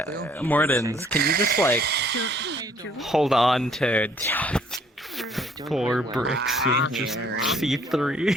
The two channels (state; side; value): normal; both; correlation 0.61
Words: Mortons, can you just like hold on to 4 bricks and just see